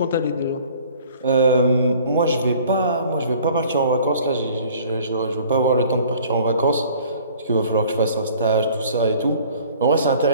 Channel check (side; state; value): both; inverted; correlation -0.52